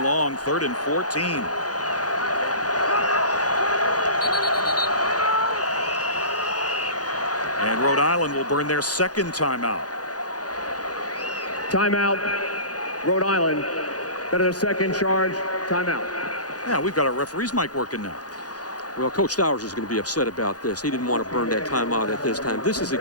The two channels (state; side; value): late; right; 0.68 ms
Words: long, 3rd and 14. And Rhode Island will burn their second timeout. Timeout, Rhode Island. That is their second charge. Timeout. Yeah, we've got our referee's mic working now. Well, Coach Stowers is going to be upset about this. He didn't want to burn that timeout at this time. This is,